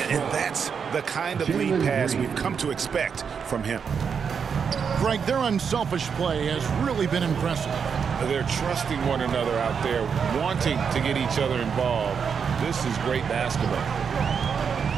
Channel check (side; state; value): left; quieter; 6.6 dB